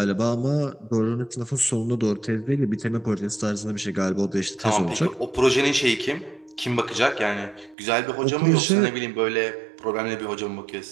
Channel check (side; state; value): left; drops out; at 7.8 s